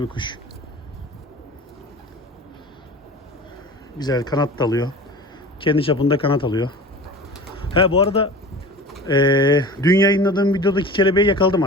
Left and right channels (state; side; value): normal; both; correlation 0.36